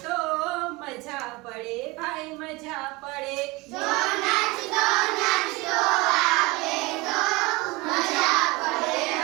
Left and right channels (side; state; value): left; quieter; 23.2 dB